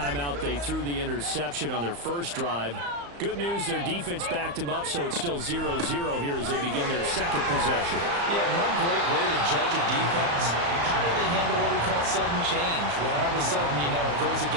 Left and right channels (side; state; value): left; late; 35 ms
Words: out they threw the interception on their 1st drive. Good news, their defense backed them up, so it's still 0-0 here as they begin their 2nd possession. Yeah, one great way to judge a defense. How do they handle what we call sudden change? When all of a sudden, you know, it goes